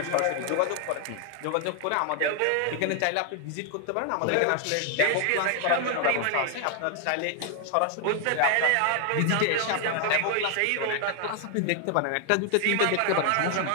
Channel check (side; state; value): both; different; correlation 0.00